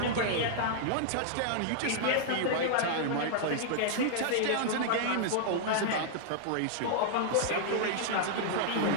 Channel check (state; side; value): different; both; correlation -0.01